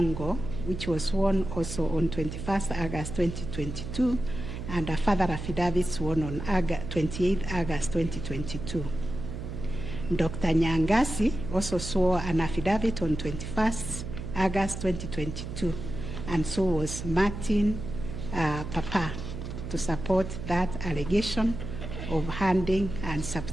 which was sworn also on 21st August 2022, and a further affidavit sworn on 28th August 2022. Dr. Nyangasi also swore an affidavit on 21st August 2022, and so was Martin Papa, to support that allegation of handing and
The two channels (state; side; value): noise; right; hum, 7 dB below the sound